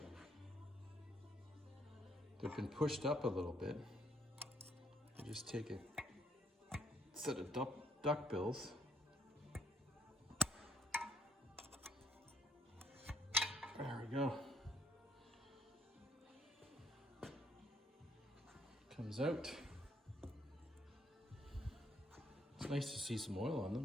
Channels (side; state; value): both; normal; correlation 0.69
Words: been pushed up a little bit, I just take a set of duck bills. There we go. Comes out. It's nice to see some oil on